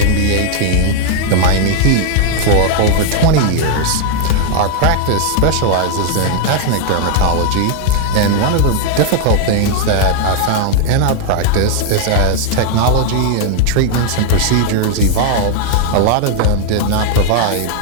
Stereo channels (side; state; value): both; different; correlation 0.00